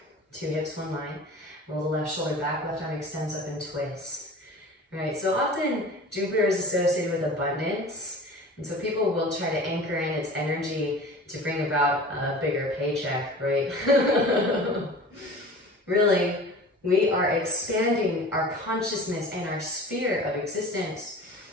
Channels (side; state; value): both; normal; correlation 0.39